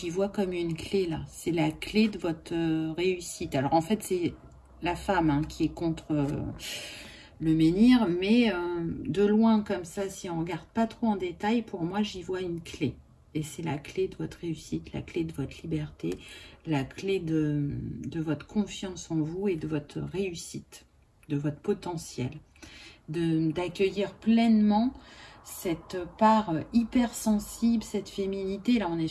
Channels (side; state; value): both; identical; correlation 1.00